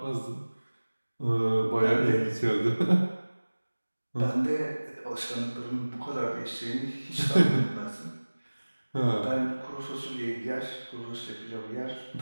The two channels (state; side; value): inverted; both; correlation -1.00